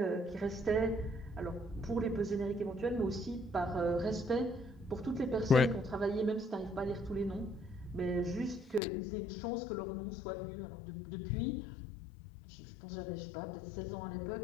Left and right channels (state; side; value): drops out; right; at 8.8 s